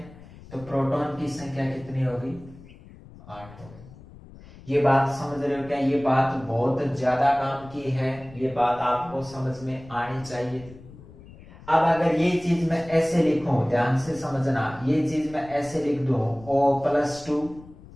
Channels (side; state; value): left; noise; rumble, 20 dB below the sound